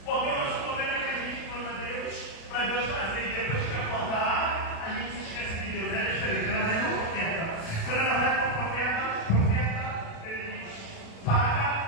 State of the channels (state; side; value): late; right; 36 ms